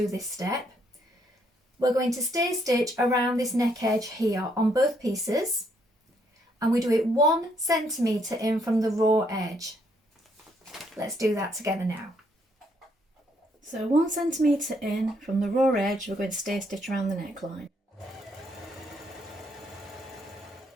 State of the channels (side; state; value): both; normal; correlation 0.71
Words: this step. We're going to stay stitch around this neck edge here on both pieces, and we do it 1 centimetre in from the raw edge. Let's do that together now. So 1 centimetre in from the raw edge, we're going to stay stitch around the neckline.